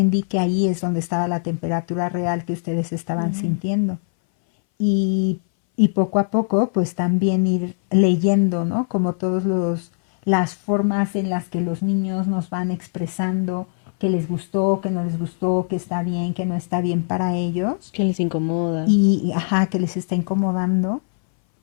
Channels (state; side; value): silent; right; 61 dB below the other